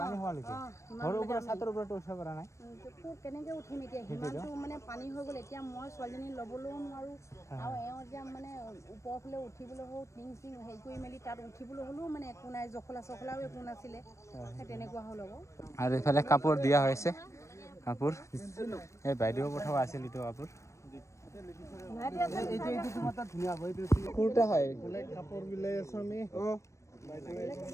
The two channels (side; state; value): right; late; 0.15 ms